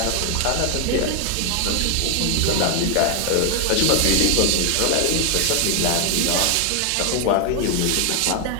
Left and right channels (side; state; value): both; different; correlation 0.00